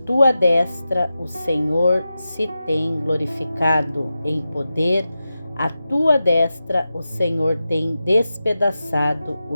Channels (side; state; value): both; inverted; correlation -0.92